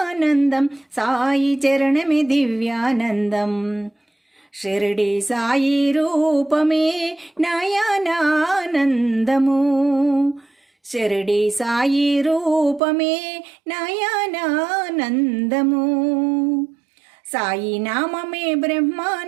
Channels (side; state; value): left; drops out; at 12.8 s